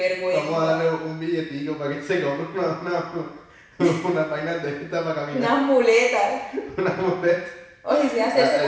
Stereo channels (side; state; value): both; identical; correlation 1.00